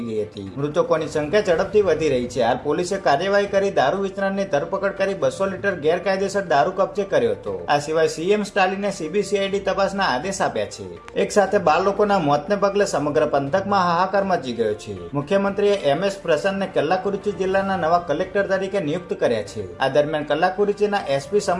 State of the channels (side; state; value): both; identical; correlation 1.00